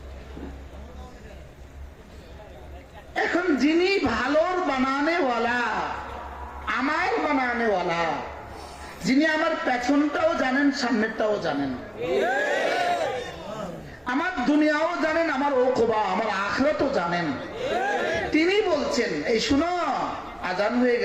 এখন যিনি ভালোর বানানেওয়ালা, আমার বানানেওয়ালা, যিনি আমার পেছনটাও জানেন, সামনেরটাও জানেন, আমার দুনিয়াও জানেন, আমার ওকবা, আমার আখিরাতও জানেন, তিনি বলছেন এই শুনো, আজান হয়ে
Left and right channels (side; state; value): both; identical; correlation 1.00